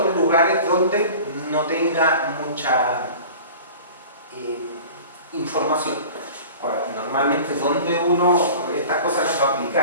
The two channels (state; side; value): inverted; both; correlation -0.40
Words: lugares donde no tenga mucha información. Ahora, normalmente donde uno estas cosas las va a